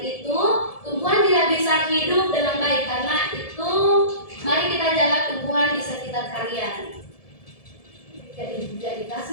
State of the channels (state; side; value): late; right; 1.7 ms